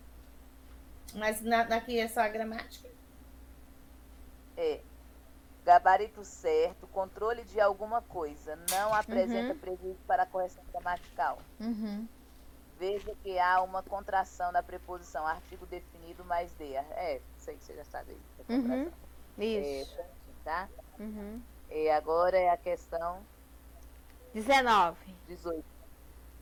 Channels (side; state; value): both; identical; correlation 1.00